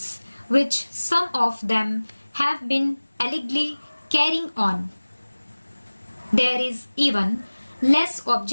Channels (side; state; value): both; inverted; correlation -1.00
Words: which some of them have been allegedly carrying on. There is even less